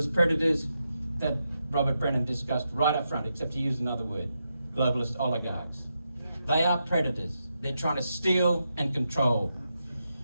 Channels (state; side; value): inverted; both; correlation -0.85